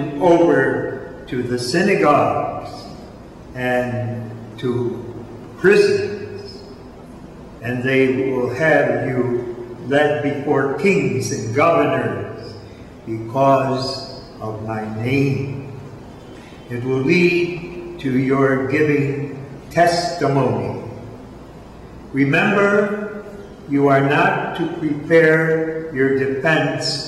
over to the synagogues and to prisons, and they will have you led before kings and governors because of my name. It will lead to your giving testimony. Remember, you are not to prepare your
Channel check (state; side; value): identical; both; correlation 1.00